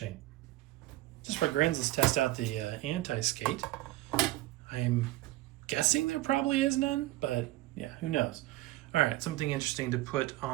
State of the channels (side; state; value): left; quieter; 17.3 dB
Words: Just for grins, let's test out the anti-skate. I'm guessing there probably is none, but yeah, who knows? All right, something interesting to put